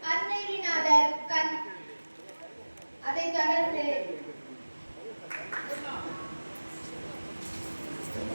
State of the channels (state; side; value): inverted; both; correlation -1.00